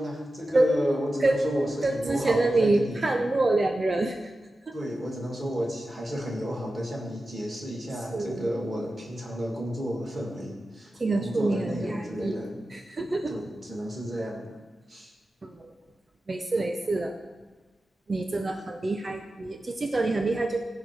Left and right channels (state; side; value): normal; both; correlation 0.93